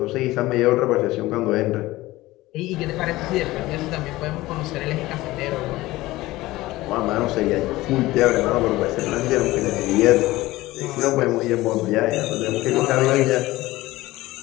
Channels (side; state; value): right; quieter; 18.2 dB